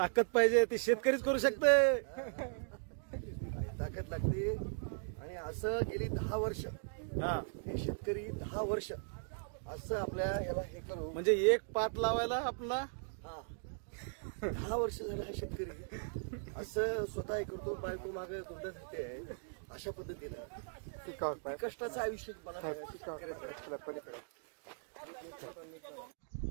पाहिजे, ती शेतकरीच करू शकते. ताकद लागते. आणि असं गेली 10 वर्ष हे शेतकरी 10 वर्ष असं आपल्या ह्याला हे करू, म्हणजे एक पात लावायला आपला 10 वर्ष झालं हा शेतकरी असं स्वतः हे करतो. बायको मागे धोंडा धरते आहे अशा पद्धतीनं कष्टाचं आयुष्य मला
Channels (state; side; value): silent; left; digital silence